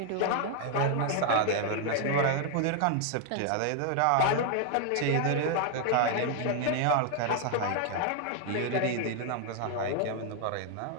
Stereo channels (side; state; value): both; different; correlation 0.00